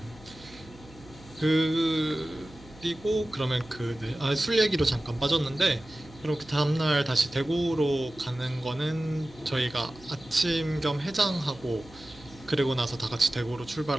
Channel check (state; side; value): noise; right; hum, 21 dB below the sound